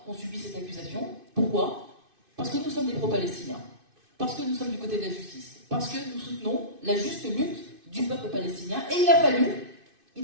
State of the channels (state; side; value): late; left; 2.6 ms